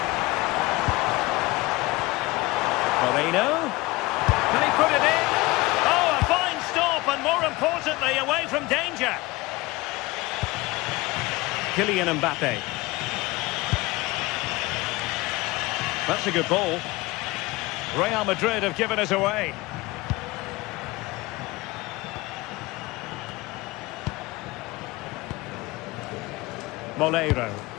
Moreno. Can he put it in? Oh, a fine stop, and more importantly, away from danger. Kylian Mbappe. That's a good ball. Real Madrid have given us away. Molero.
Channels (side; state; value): right; quieter; 21.6 dB